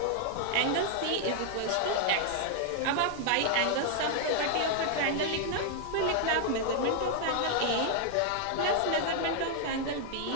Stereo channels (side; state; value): both; different; correlation 0.00